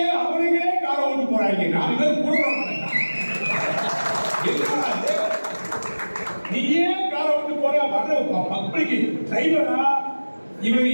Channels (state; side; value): inverted; both; correlation -1.00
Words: அவனுங்களே கார ஓட்டு போறாங்க. 4 பேர் கூட நீ ஏன் கார ஓட்டு போற? வர்ற மக்களுக்கு டிரைவரா இவர்